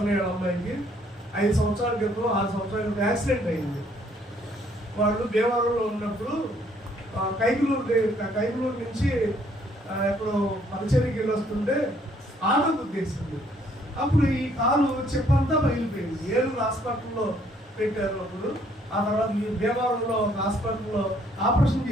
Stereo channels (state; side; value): normal; both; correlation 0.65